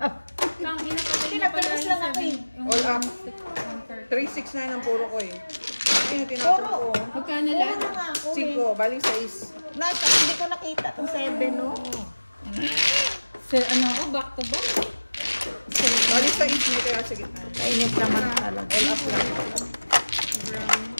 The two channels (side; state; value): both; inverted; correlation -1.00